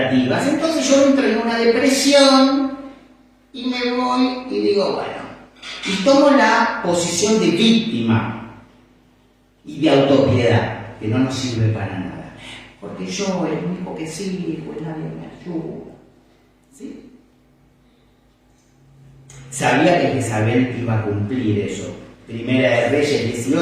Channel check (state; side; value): identical; both; correlation 1.00